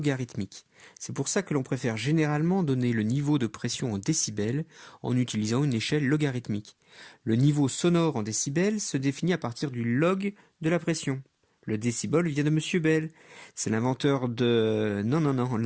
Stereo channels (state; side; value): identical; both; correlation 1.00